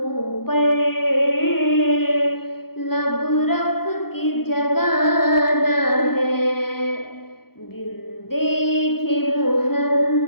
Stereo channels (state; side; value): late; right; 0.94 ms